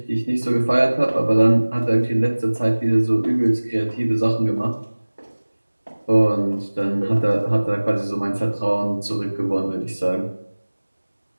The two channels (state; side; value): inverted; both; correlation -1.00